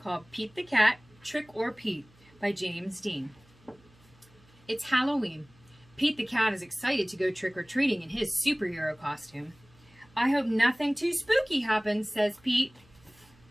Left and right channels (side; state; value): right; noise; hum, 28 dB below the sound